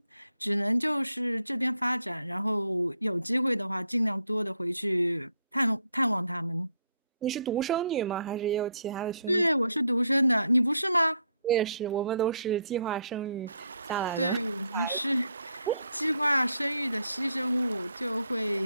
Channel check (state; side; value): inverted; both; correlation -0.73